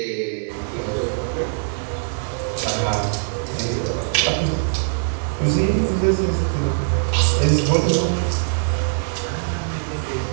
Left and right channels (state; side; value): silent; left; digital silence